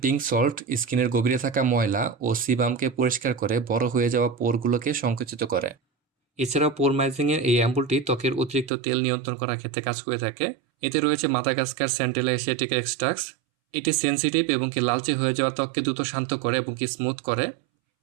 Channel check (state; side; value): drops out; left; at 8.7 s